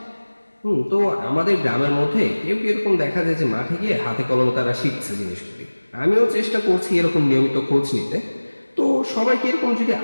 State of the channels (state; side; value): inverted; both; correlation -1.00